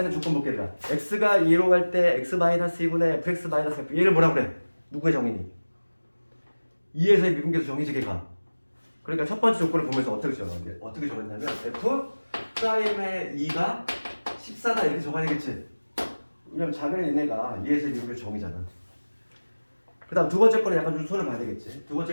있는 조건 볼게. 얘들아 x가 2로 갈 때 x-2분의 fx-f 얘를 뭐라 그래? 누구의 정의니? 2에서의 미분계수 정의지 걔가. 그러니까 첫 번째 조건을 보면서 어떻게 정했냐면 f 프라임의 2가 14다 이렇게 적어야 되겠지. 왜냐면 작은 얘네가 2에서의 미분계수 정의잖아. 그 다음 두 번째 거는 약간 좀 손을 봐야 되겠지. 두 번째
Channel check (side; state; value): both; inverted; correlation -1.00